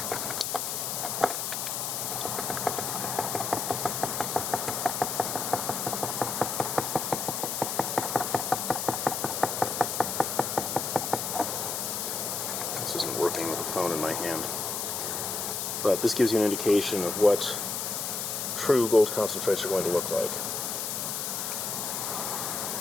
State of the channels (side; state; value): left; noise; hiss, 2 dB below the sound